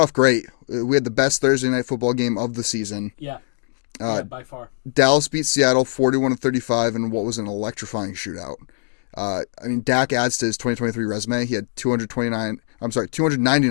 great. We had the best Thursday night football game of the season. Yeah. By far. Dallas beat Seattle 41-35 in what was an electrifying shootout. Dak adds to his 2023 resume. He had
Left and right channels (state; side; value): silent; right; digital silence